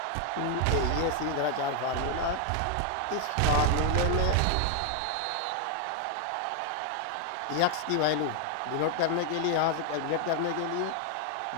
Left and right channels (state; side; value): different; both; correlation 0.00